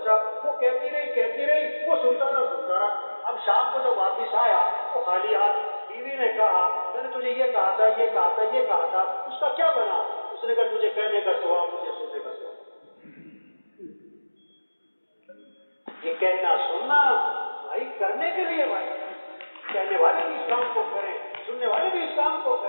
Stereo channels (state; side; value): inverted; both; correlation -1.00